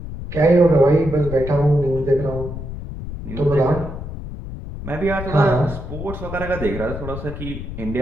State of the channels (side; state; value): left; noise; rumble, 9 dB below the sound